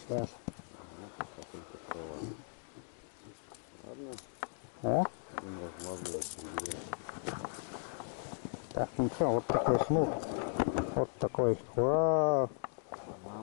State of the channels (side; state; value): right; silent; 53 dB below the other